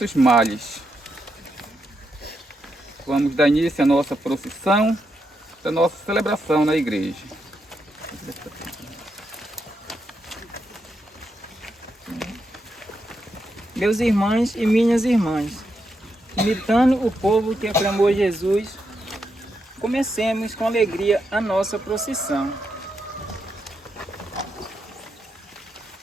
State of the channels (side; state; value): both; normal; correlation 0.82